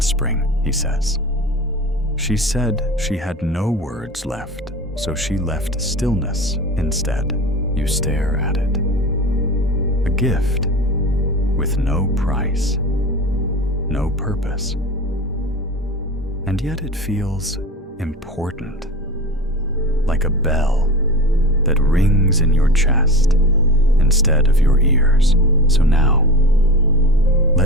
spring," he says. "She said she had no words left, so she left stillness instead." You stare at it. A gift with no price, no purpose. And yet it feels important, like a bell that rings in your chest instead of your ears. So now,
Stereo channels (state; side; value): normal; both; correlation 0.31